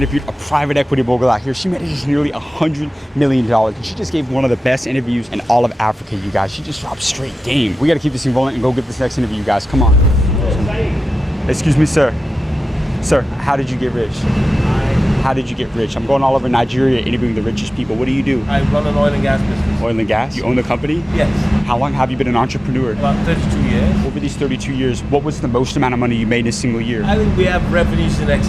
a private equity mogul out here. She manages nearly $100 million. And she just gave one of the best interviews in all of Africa, you guys. She just dropped straight game. We got to keep this thing rolling and go get this next interview, you guys. Come on. Excuse me, sir. Sir, how did you get rich? How did you get rich? I'm going all over Nigeria interviewing the richest people. What do you do? I run an oil and gas business. Oil and gas? You own the company? Yes. How long have you been an entrepreneur? About 32 years. Over these 32 years, what was the most amount of money you made in a single year? I think we have revenues in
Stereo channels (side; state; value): both; normal; correlation 0.94